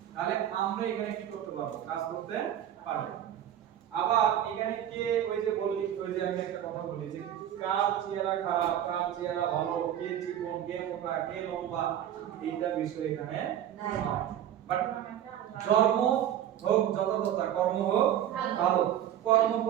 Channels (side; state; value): left; quieter; 10.9 dB